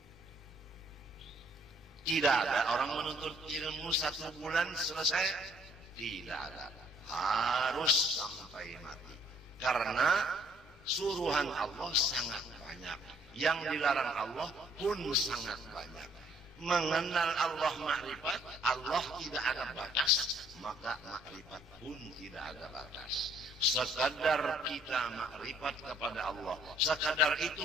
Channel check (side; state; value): both; normal; correlation 0.63